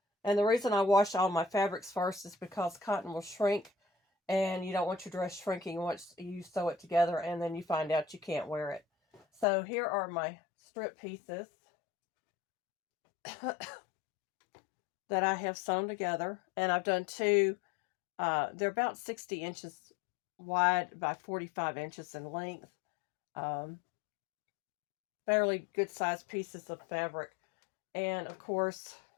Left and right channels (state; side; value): drops out; right; at 9.5 s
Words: And the reason I wash all my fabrics first is because cotton will shrink, and you don't want your dress shrinking once you sew it together and then you find out you can't wear it. So here are my strip pieces that I have sewn together, and I've done two. They're about 60 inches wide by 45 inches in length. Fairly good sized pieces of fabric. And of course,